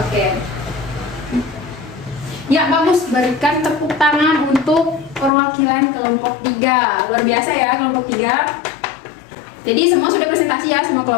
Oke. Ya, bagus. Berikan tepuk tangan untuk perwakilan kelompok 3. Luar biasa ya kelompok 3. Jadi semua sudah presentasi ya semua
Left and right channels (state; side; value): drops out; right; at 5.3 s